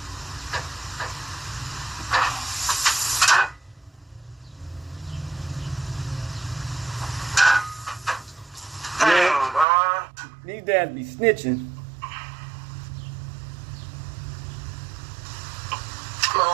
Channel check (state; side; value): drops out; left; at 9.7 s